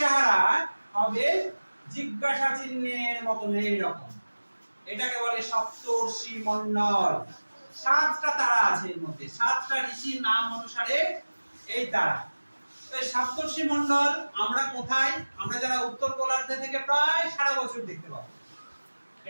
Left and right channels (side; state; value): both; inverted; correlation -1.00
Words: হবে জিজ্ঞাসা চিহ্নের মতন এইরকম। এটাকে বলে সপ্তর্ষি মণ্ডল। 7টা তারা আছে এর মধ্যে, 7টা ঋষির নাম অনুসারে এই তারা। তো এই সপ্তর্ষি মণ্ডল আমরা কোথায়, আমরা যারা উত্তর গোলার্ধে থেকে প্রায় সারা বছর দেখতে পাবো।